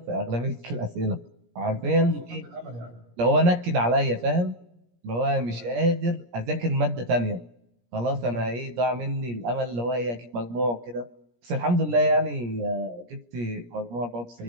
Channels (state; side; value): late; left; 17 ms